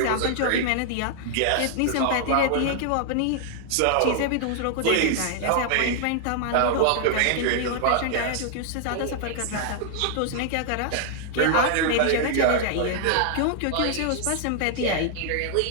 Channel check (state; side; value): different; both; correlation 0.00